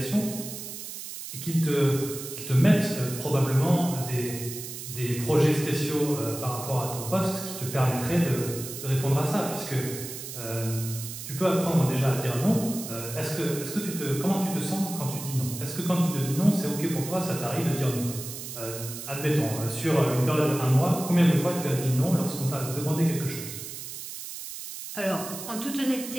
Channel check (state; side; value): noise; right; hiss, 9 dB below the sound